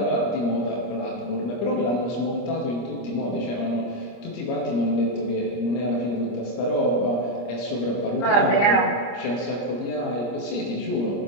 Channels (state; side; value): late; right; 25 ms